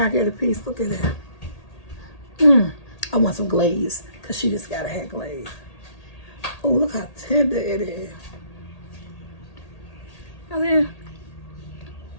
I get a piece? Look at that. I want some glaze, because she just gotta have glaze. Oh, look how tender it is. Oh, yeah.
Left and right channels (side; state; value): right; late; 1.8 ms